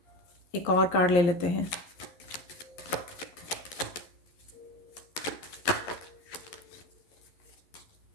एक और कार्ड ले लेते हैं।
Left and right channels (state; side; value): late; right; 11 ms